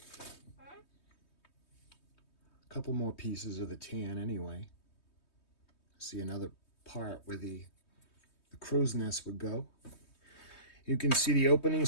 a couple more pieces of the tan anyway. See another part where the crow's nest would go. You can see the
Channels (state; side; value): late; right; 3.2 ms